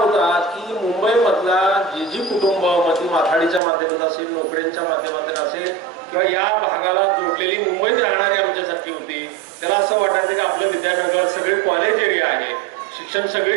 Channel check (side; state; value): left; drops out; at 3.6 s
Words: की मुंबईमधला जी कुटुंब मग ती माथाडीच्या माध्यमात असेल, नोकऱ्यांच्या माध्यमातून असेल किंवा या भागाला जोडलेली मुंबईत राहणारी आमच्यासारखी होती, त्याला असं वाटायचं की आपलं विद्यानगर सगळे कॉलेज एरिया आहे, शिक्षण